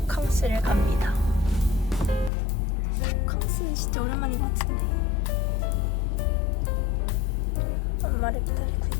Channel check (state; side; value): drops out; right; at 2.3 s